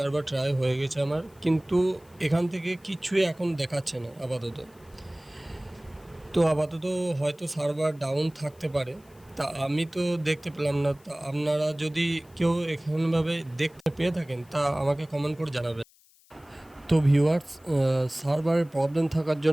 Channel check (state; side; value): noise; left; hiss, 30 dB below the sound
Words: ট্রাই হয়ে গেছে আমার, কিন্তু এখান থেকে কিছুই এখন দেখাচ্ছে না আপাতত। তো আপাতত হয়তো সার্ভার ডাউন থাকতে পারে, তা আমি তো দেখতে পেলাম না। তা আপনারা যদি কেউ এখানভাবে দেখতে পেয়ে থাকেন তা আমাকে কমেন্ট করে জানাবেন। তো ভিউয়ার্স, সার্ভারের প্রবলেম থাকার